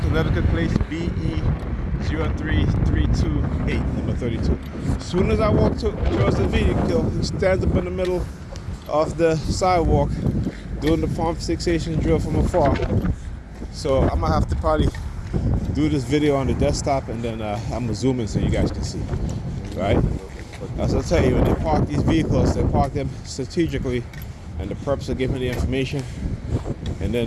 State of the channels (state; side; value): identical; both; correlation 1.00